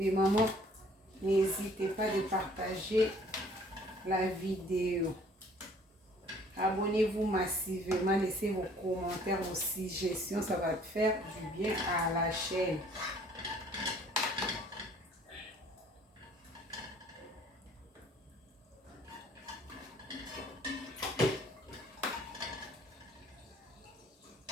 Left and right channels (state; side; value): normal; both; correlation 0.56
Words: mamans, n'hésitez pas de partager la vidéo. Abonnez-vous massivement, laissez vos commentaires, vos suggestions, ça va faire du bien à la chaîne.